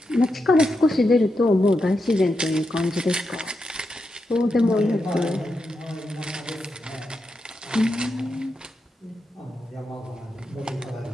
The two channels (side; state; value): both; normal; correlation 0.86